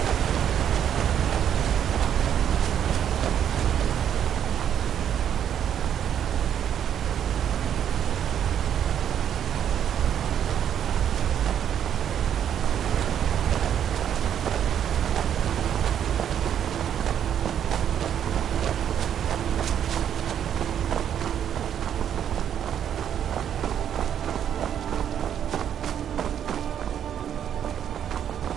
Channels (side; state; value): left; quieter; 9.4 dB